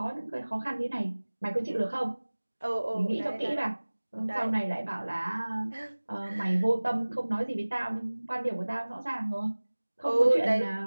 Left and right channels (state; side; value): inverted; both; correlation -1.00